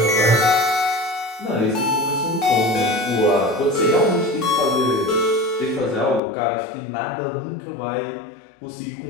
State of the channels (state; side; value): drops out; right; at 6.2 s